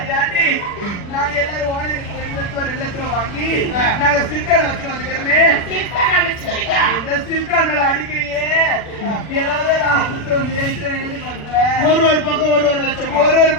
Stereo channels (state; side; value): late; right; 40 ms